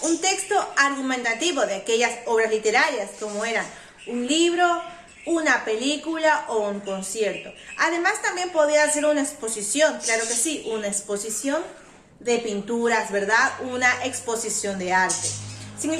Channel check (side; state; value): both; identical; correlation 1.00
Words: un texto argumentativo de aquellas obras literarias como eran un libro, una película o un concierto. Además, también podía ser una exposición, claro que sí, una exposición de pinturas, ¿verdad? Una exposición de arte. Si en